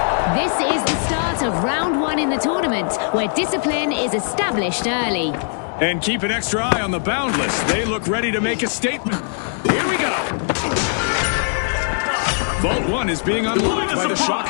This is the start of round one in the tournament, where discipline is established early. And keep an extra eye on the Boundless. They look ready to make a statement. Here we go. Vault 1 is being unlocked by the Shock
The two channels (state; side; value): silent; right; digital silence